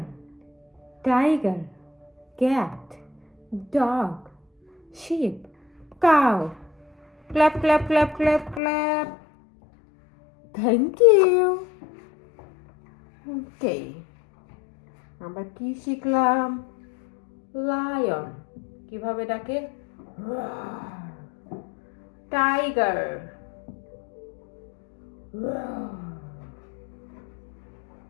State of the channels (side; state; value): right; drops out; at 8.6 s